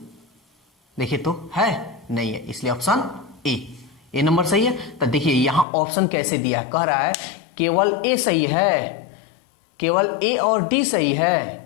देखिए तो है, नहीं है, इसलिए ऑप्शन ए नंबर सही है। तो देखिए यहां ऑप्शन कैसे दिया है, कह रहा है केवल ए सही है, केवल ए और डी सही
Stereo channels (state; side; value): drops out; right; at 5.7 s